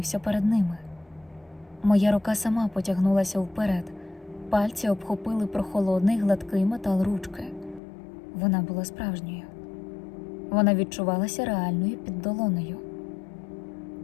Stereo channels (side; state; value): right; drops out; at 7.8 s